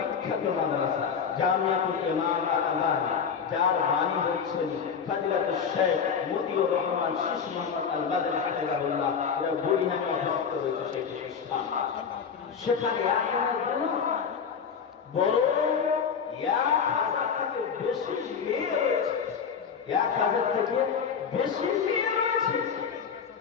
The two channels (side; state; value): right; quieter; 6.6 dB